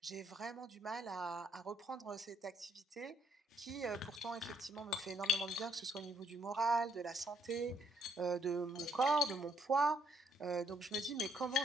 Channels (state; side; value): normal; both; correlation 0.69